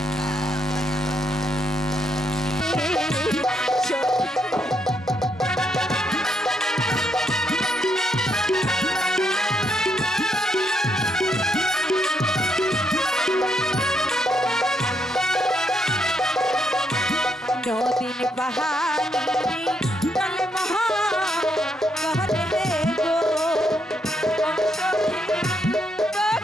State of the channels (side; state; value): both; normal; correlation 0.77